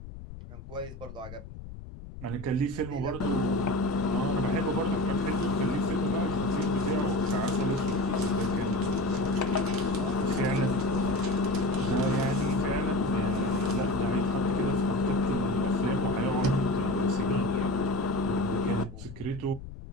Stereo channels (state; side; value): noise; left; rumble, 13 dB below the sound